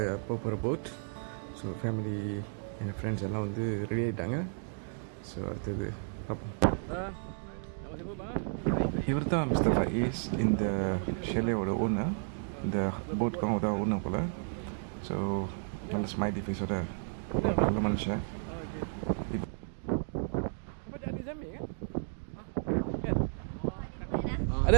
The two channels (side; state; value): left; silent; digital silence